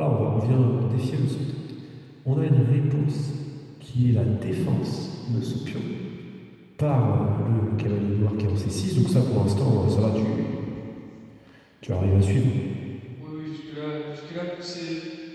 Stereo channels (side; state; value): both; identical; correlation 1.00